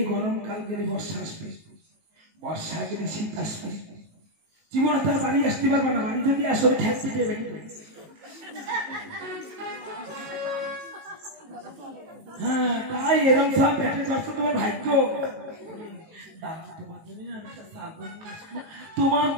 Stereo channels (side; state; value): left; late; 19 ms